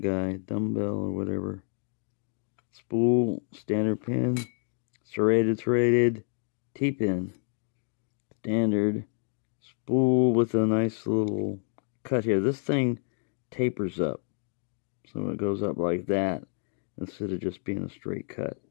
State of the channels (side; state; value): right; silent; 56 dB below the other